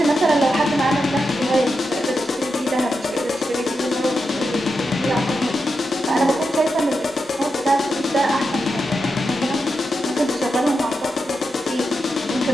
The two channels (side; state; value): both; normal; correlation 0.87